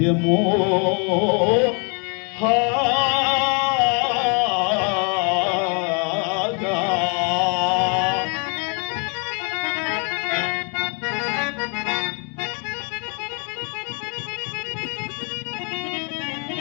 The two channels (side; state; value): right; quieter; 36.4 dB